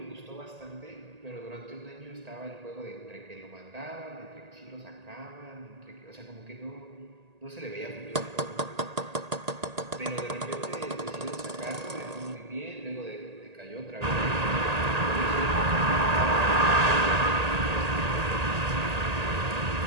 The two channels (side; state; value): left; late; 1.8 ms